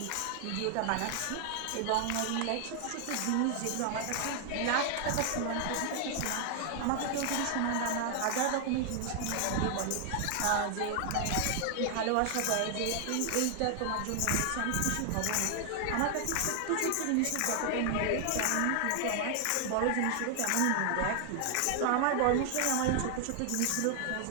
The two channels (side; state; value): both; different; correlation 0.00